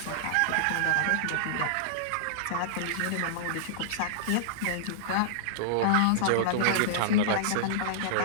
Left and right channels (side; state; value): both; different; correlation -0.01